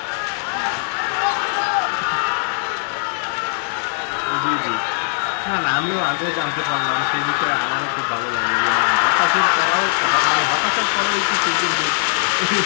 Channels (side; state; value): right; silent; digital silence